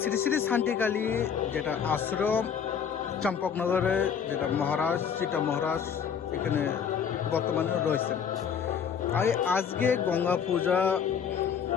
শ্রী শ্রী শান্তিকালী যেটা আশ্রম চম্পকনগরে যেটা মহারাজ চিতা মহারাজ এখানে বর্তমানে রয়েছেন। আজকে গঙ্গা পূজা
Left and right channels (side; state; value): right; quieter; 7.4 dB